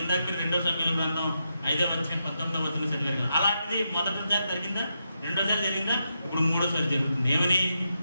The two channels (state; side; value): inverted; both; correlation -0.85